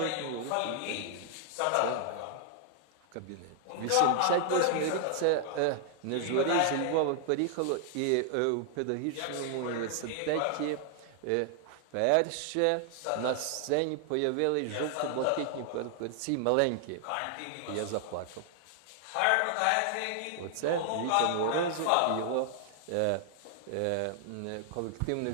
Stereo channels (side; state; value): both; different; correlation 0.00